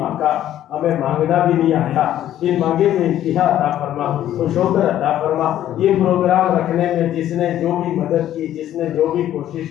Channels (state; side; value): quieter; right; 12.0 dB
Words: آقا ہمیں مانگنا بھی نہیں آیا، ان مانگے میں انتہا عطا فرما، خوش ہو کر عطا فرما۔ یہ پروگرام رکھنے میں جس نے جو بھی مدد کی، جس نے جو بھی کوشش